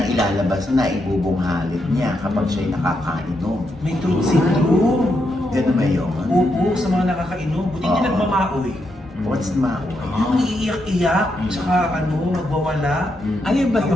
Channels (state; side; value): normal; both; correlation 0.81